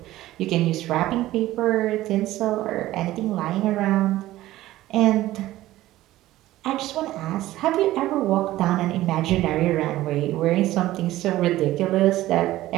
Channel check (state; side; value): quieter; left; 15.7 dB